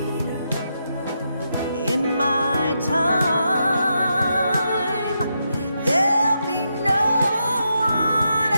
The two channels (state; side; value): inverted; both; correlation -0.83